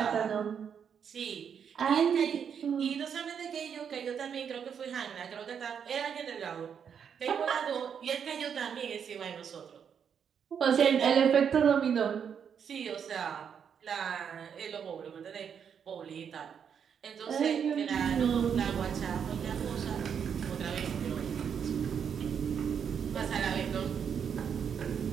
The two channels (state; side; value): quieter; left; 7.5 dB